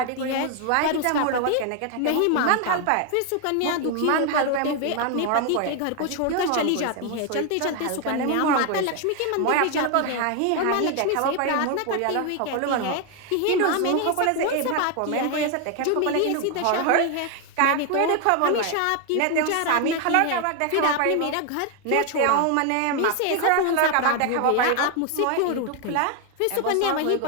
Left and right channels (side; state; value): both; different; correlation 0.01